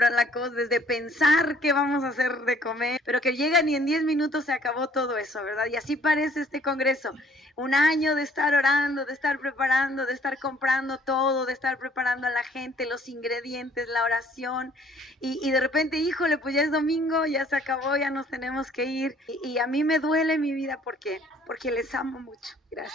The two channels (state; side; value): normal; both; correlation 0.60